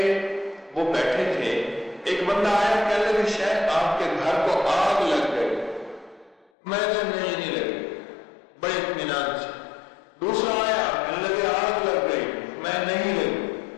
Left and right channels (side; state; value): right; drops out; at 6.5 s